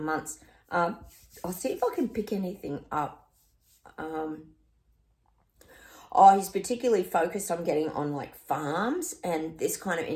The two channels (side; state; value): both; identical; correlation 1.00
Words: I'll see if I can pick anything up. He's particularly focused on getting on like farms and this kind of